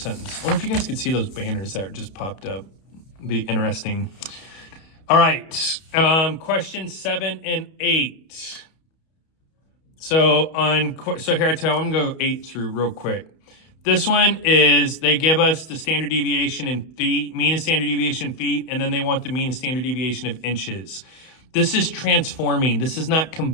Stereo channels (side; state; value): right; late; 31 ms